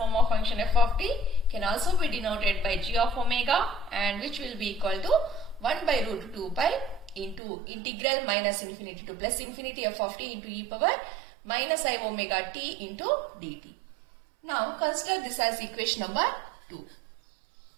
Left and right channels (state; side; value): drops out; left; at 7.4 s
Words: of function f of t can also be denoted by g of omega, and which will be equal to 1 by root 2 pi into integral minus infinity to plus infinity f of t into e power minus I omega t into dt. Now consider this as equation number 2.